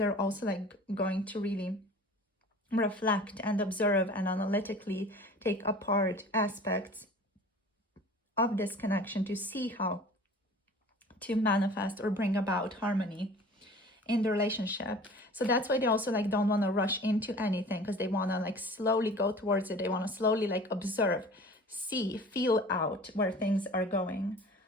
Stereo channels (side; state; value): both; normal; correlation 0.43